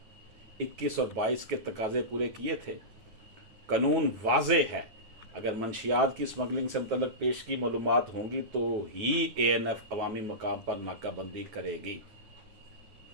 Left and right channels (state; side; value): late; left; 9.3 ms